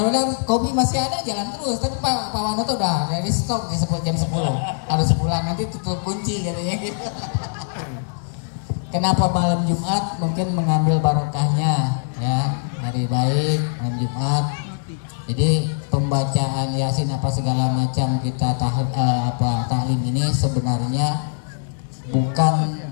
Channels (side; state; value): right; silent; 64 dB below the other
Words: udah kopi masih ada jalan terus, tapi Pak Wanoto udah dari stop di jam 10. Harus pulang nanti tutup kunci katanya gitu. Kenapa malam Jumat? Mungkin mengambil barokahnya ya, hari baik malam Jumat. Jadi pembacaan Yasin apa segala macam kita taklim ini sebenarnya bukan